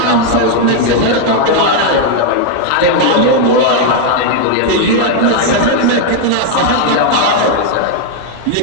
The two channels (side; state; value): both; different; correlation 0.00